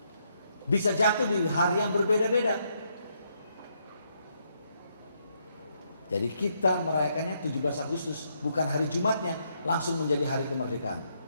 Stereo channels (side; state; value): both; inverted; correlation -0.76